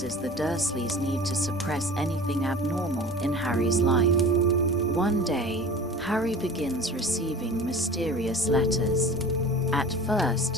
the Dursleys' need to suppress anything abnormal in Harry's life. One day, Harry begins receiving mysterious letters. At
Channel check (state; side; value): normal; both; correlation 0.40